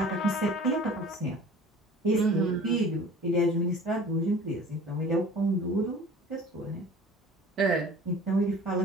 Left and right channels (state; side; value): normal; both; correlation 0.44